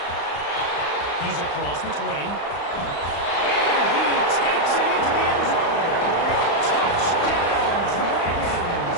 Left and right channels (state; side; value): late; right; 35 ms